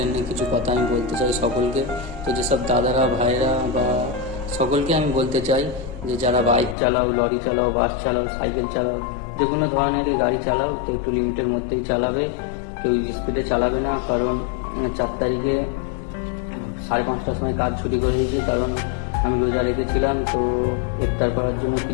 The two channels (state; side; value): drops out; right; at 6.8 s